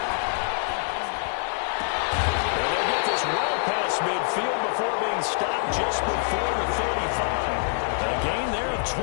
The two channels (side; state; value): right; silent; digital silence